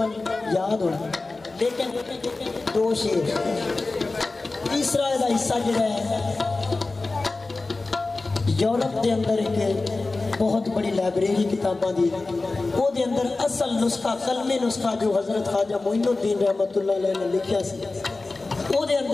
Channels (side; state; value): right; quieter; 3.4 dB